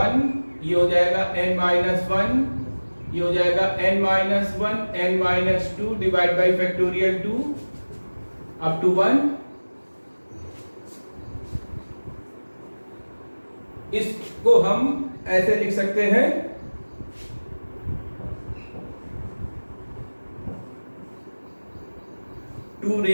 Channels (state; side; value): inverted; both; correlation -1.00